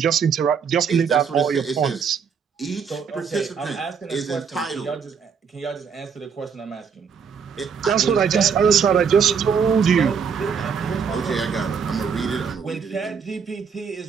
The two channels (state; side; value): quieter; left; 6.5 dB